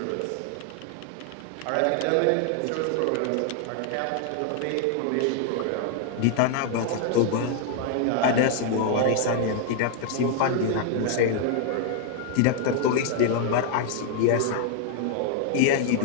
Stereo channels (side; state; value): both; different; correlation 0.00